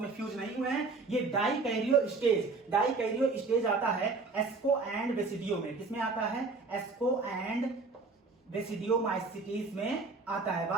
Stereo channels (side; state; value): left; quieter; 3.9 dB